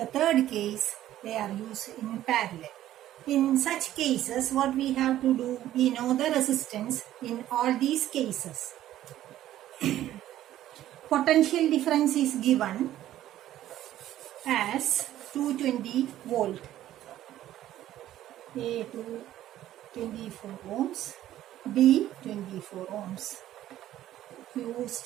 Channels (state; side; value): quieter; left; 13.1 dB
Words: third case, they are used in parallel. In such cases, what we have to do, we know the resistance in all these cases. Potential difference is given as 220 volt. A 24 ohms, B 24 ohms. Used